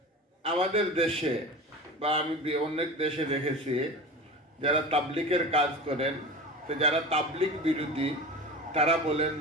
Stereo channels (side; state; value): both; normal; correlation 0.31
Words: আমাদের দেশে বা আমি অনেক দেশে দেখেছি যারা তাবলিগের কাজ করেন, তো যারা তাবলিগ বিরোধী তারা বলেন